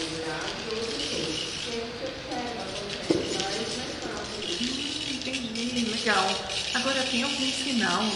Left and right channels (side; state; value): both; identical; correlation 1.00